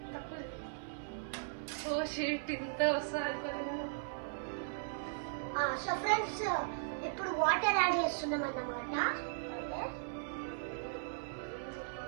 ఓ షీట్ ఇంత వస్తాను. సో ఫ్రెండ్స్, ఇప్పుడు వాటర్ యాడ్ చేస్తున్నాం అన్నమాట.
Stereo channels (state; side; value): silent; left; 53 dB below the other